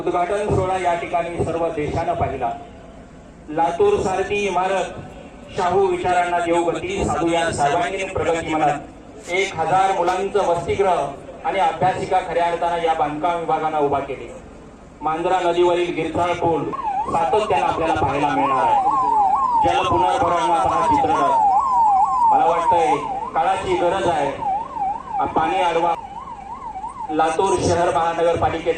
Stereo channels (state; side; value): identical; both; correlation 1.00